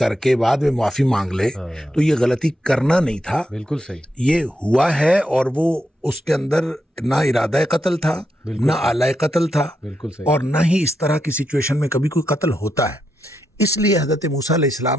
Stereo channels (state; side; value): normal; both; correlation 0.83